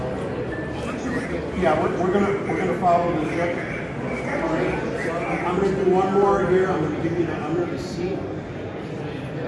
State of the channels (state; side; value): identical; both; correlation 1.00